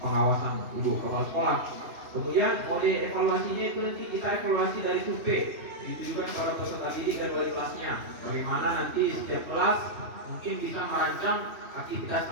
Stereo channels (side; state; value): left; late; 3.1 ms